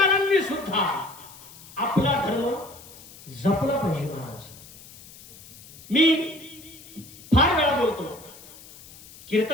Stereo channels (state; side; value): noise; left; hiss, 19 dB below the sound